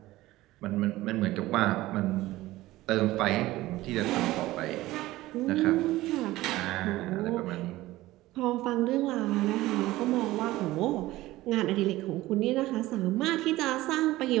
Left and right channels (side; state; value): left; quieter; 17.3 dB